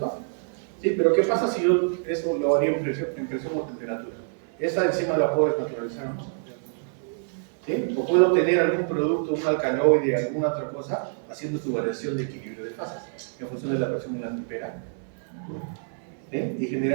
Sí, pero ¿qué pasa si yo eso lo haría en presión o temperatura? Esa enzima la puedo desnaturalizar, ¿no? ¿Sí? O puedo obtener algún producto, un alcaloide, alguna otra cosa, haciendo su variación de equilibrio de fases en función de la presión y la temperatura. ¿Sí? Y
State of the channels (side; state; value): left; silent; 58 dB below the other